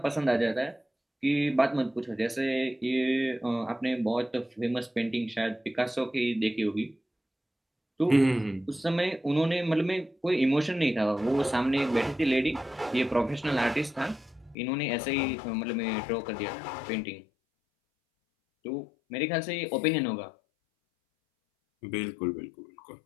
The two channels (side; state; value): right; drops out; at 14.6 s